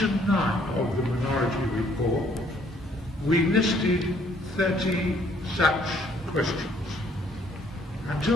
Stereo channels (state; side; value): normal; both; correlation 0.64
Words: 9 of the minority report, we listed 30 such questions.